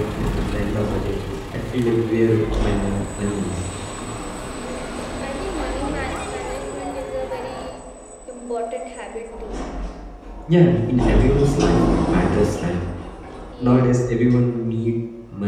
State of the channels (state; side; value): identical; both; correlation 1.00